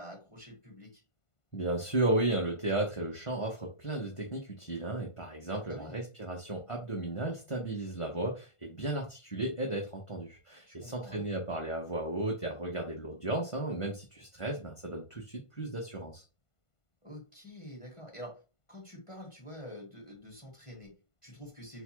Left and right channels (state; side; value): late; right; 1.5 ms